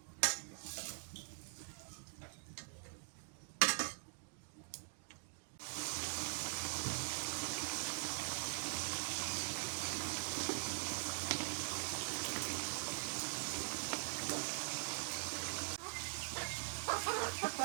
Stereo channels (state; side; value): silent; left; digital silence